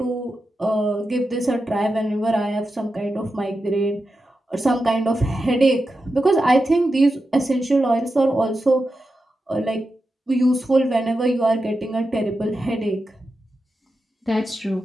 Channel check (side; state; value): both; normal; correlation 0.90